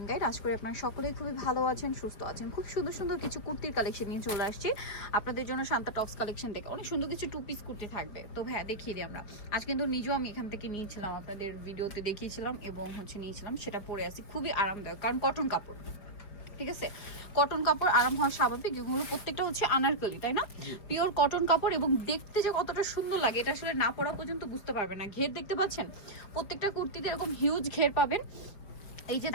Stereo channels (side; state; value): right; late; 5.3 ms